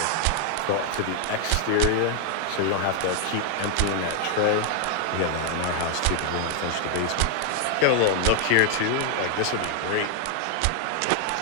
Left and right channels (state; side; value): different; both; correlation 0.00